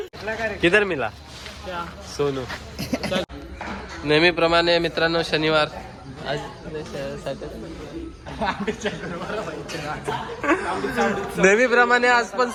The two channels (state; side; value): identical; both; correlation 1.00